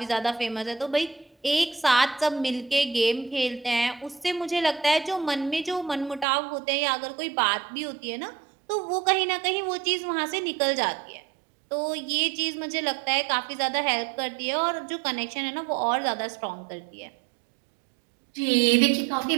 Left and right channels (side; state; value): left; drops out; at 6.2 s